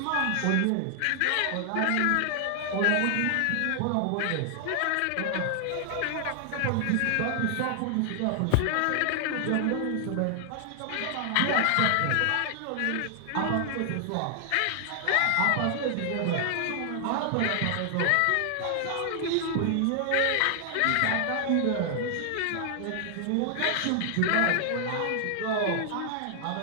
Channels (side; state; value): both; different; correlation 0.00